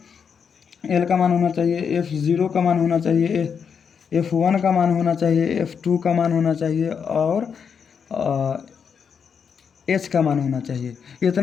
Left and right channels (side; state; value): right; quieter; 6.7 dB